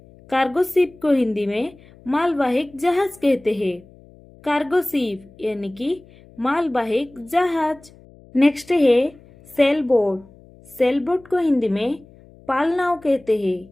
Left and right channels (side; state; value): left; noise; hum, 25 dB below the sound